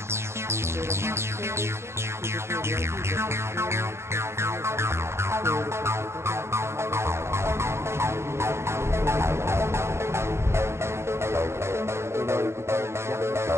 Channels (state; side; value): late; left; 0.13 ms